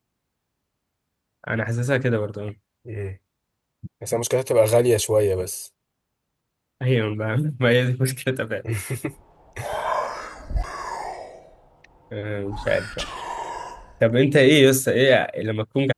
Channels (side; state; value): both; identical; correlation 1.00